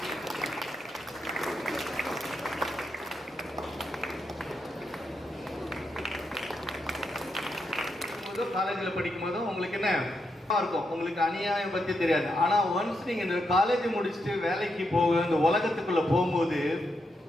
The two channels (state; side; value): normal; both; correlation 0.82